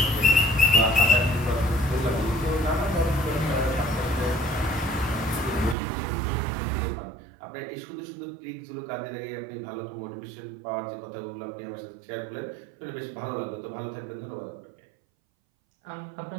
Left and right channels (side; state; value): left; drops out; at 5.8 s